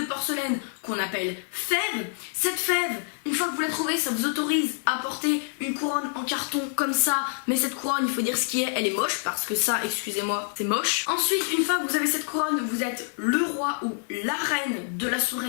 porcelaine qu'on appelle fève. Cette fève, une fois que vous la trouvez, ça vous autorise à porter une couronne en carton comme ça, mais cette couronne, il faut dire ce qui est, elle est moche, parce que ça, excusez-moi, c'est moche. Ensuite, une fois que vous avez cette couronne, vous êtes le roi ou la reine de la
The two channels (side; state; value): right; silent; 58 dB below the other